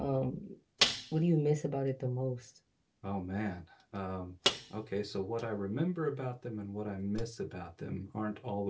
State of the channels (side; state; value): both; identical; correlation 1.00